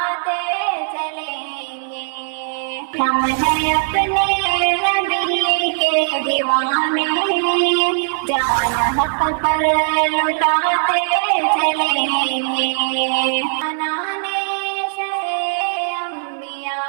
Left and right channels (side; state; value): left; silent; 66 dB below the other